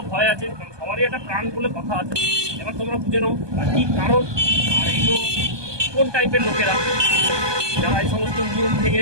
ভয় আছে, কারণ সবারই একটা প্রাণ বলে কথা আছে। এবার তোমরা বুঝে নাও আর কি কারণ, আর এইগুলো কোন টাইপের লোকেরা যারা এই সমস্ত নিয়ম থেকে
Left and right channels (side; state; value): left; late; 1.2 ms